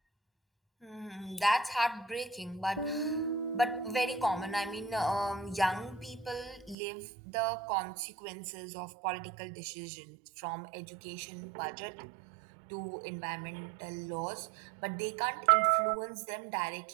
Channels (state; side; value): drops out; left; at 6.8 s